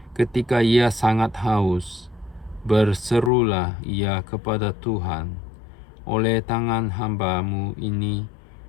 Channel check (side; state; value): right; drops out; at 3.3 s